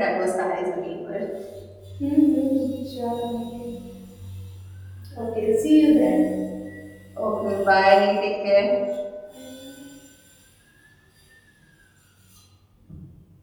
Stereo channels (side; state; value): both; identical; correlation 1.00